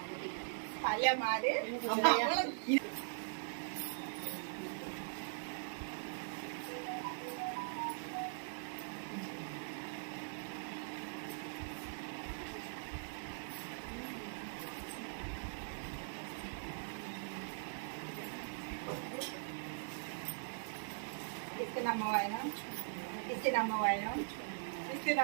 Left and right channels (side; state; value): left; silent; 50 dB below the other